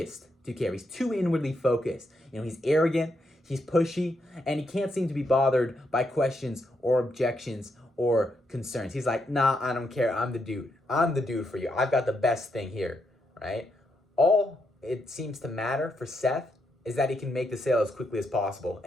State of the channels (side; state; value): both; normal; correlation 0.80